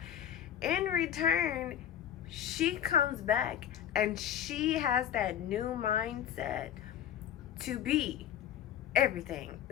In return, she comes back and she has that new mindset to be everything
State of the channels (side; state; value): right; quieter; 10.3 dB